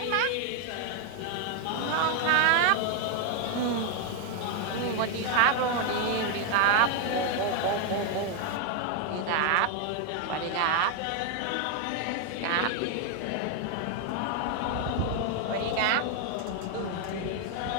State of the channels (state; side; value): different; both; correlation 0.01